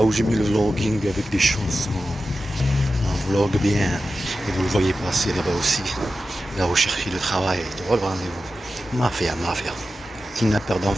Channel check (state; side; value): normal; both; correlation 0.92